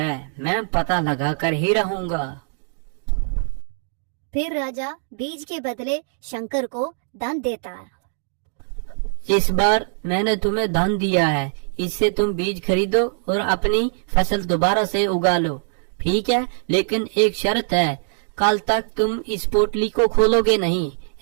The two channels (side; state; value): left; silent; digital silence